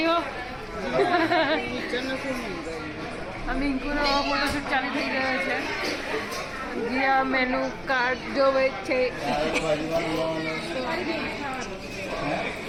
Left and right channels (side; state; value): both; identical; correlation 1.00